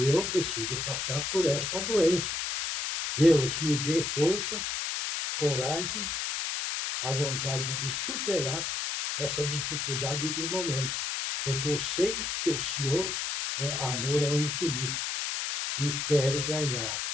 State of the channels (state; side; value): noise; left; hiss, 2 dB below the sound